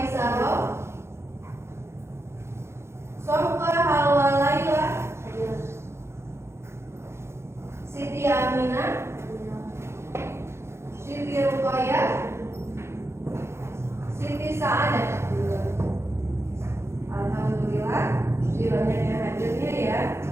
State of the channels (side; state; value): left; late; 0.13 ms